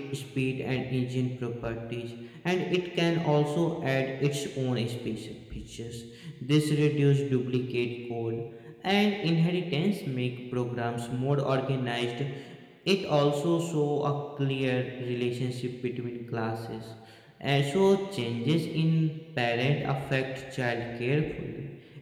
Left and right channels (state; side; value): identical; both; correlation 1.00